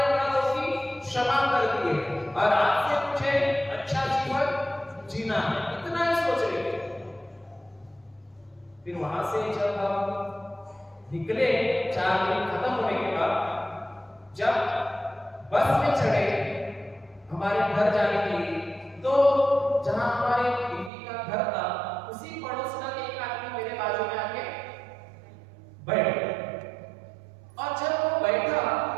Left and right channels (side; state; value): left; drops out; at 20.9 s